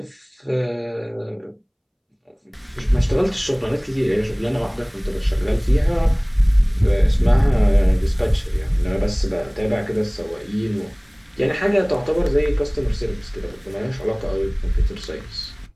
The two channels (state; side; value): identical; both; correlation 1.00